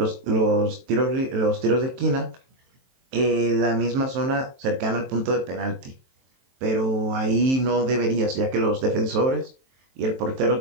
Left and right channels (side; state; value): left; late; 23 ms